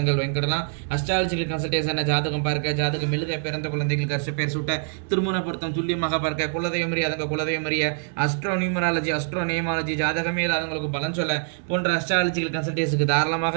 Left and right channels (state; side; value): silent; left; 62 dB below the other